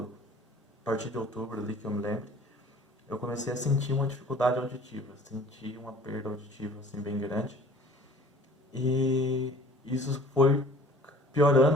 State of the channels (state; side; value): normal; both; correlation 0.50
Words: a partir de outubro, ali que eu me lembro, eu comecei a sentir uma dificuldade auditiva, senti uma perda auditiva, assim, bem grande. E isso foi